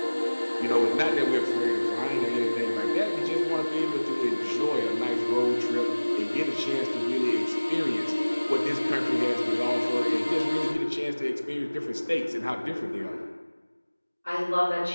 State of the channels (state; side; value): inverted; both; correlation -1.00